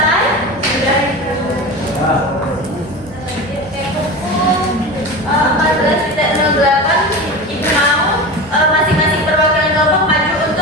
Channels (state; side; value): normal; both; correlation 0.28